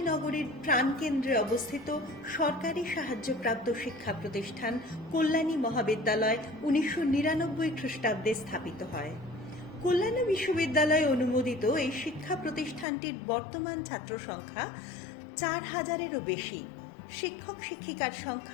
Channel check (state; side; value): drops out; right; at 12.9 s